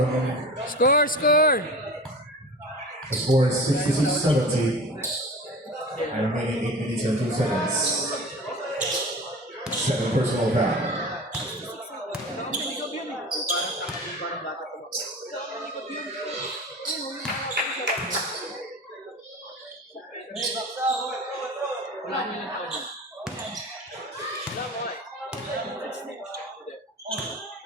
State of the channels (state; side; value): normal; both; correlation 0.35